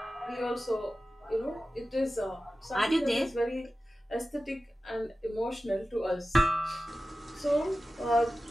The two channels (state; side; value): normal; both; correlation 0.94